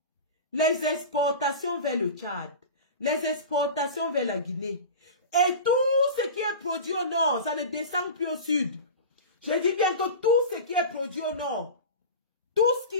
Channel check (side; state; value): both; inverted; correlation -0.30